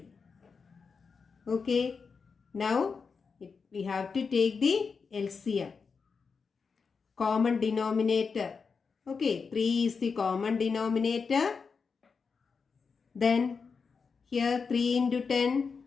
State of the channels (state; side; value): quieter; right; 5.3 dB